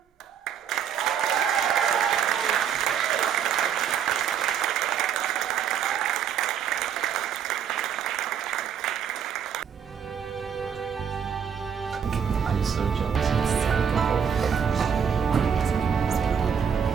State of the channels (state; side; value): quieter; left; 7.9 dB